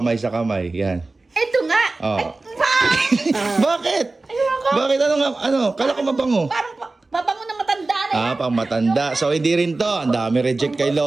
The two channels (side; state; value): left; quieter; 3.3 dB